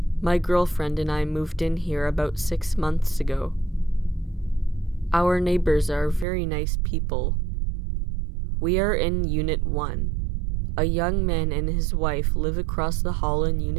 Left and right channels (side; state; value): left; drops out; at 6.2 s